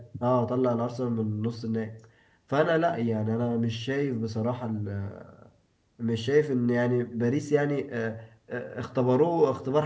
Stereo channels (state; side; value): identical; both; correlation 1.00